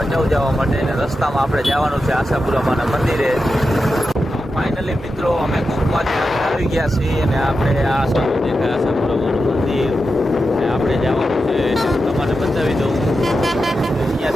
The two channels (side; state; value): both; normal; correlation 0.89